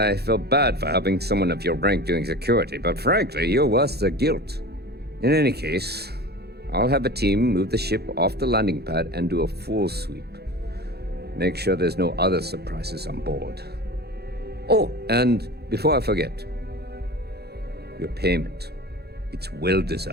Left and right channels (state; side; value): late; left; 0.47 ms